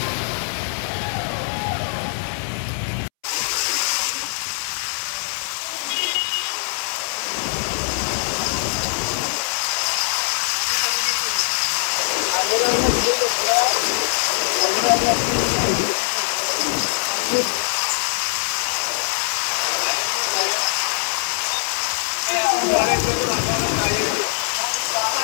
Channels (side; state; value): right; silent; 64 dB below the other